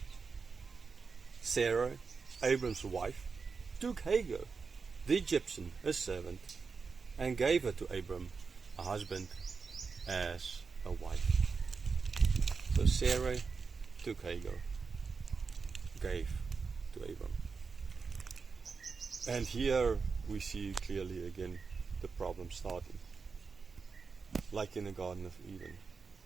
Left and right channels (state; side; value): quieter; left; 5.0 dB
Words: Sarah, Abram's wife, took Hagar, the Egyptian, a servant, and gave her to Abram, a husband, as a wife. So Sarah took Hagar, gave to Abram. And here we see clearly again the problem starting. Like in the Garden of Eden.